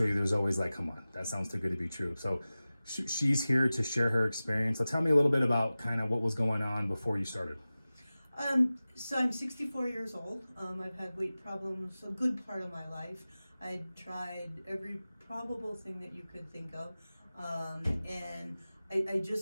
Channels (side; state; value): both; inverted; correlation -0.97